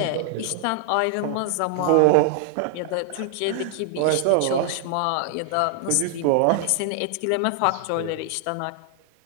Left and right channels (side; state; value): both; different; correlation 0.00